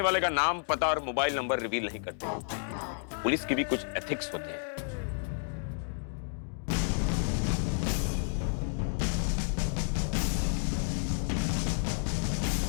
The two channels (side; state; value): right; silent; 57 dB below the other